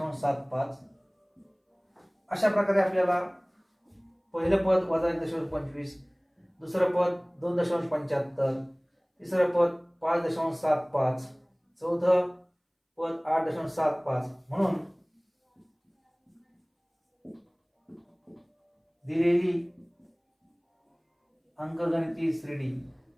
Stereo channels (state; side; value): identical; both; correlation 1.00